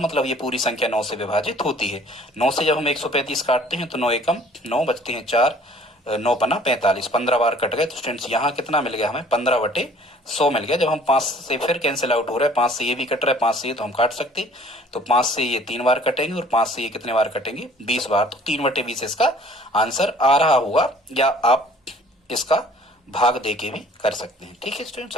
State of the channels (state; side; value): normal; both; correlation 0.54